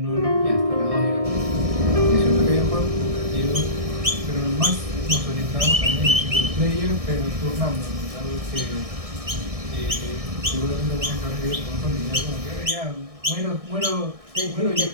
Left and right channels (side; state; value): left; late; 1.6 ms